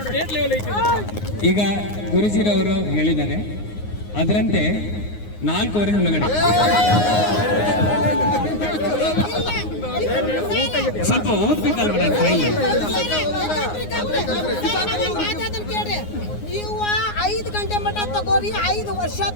ಈಗ ಗುರುಜಿರವರು ಹೇಳಿದ್ದಾರೆ, ಅದರಂತೆ 4:15 ಒಳಗಡೆ ಸ್ವಲ್ಪ ಓದ್ಬೇಕಲ್ವ ನಾನು ಫೈಲ್. ನೀವು 5 ಗಂಟೆ ಮಟ್ಟ ತಗೋರಿ, 5 ವರ್ಷ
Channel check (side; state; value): right; late; 9.6 ms